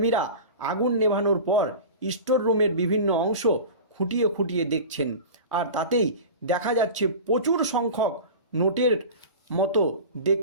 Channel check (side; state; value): both; inverted; correlation -0.33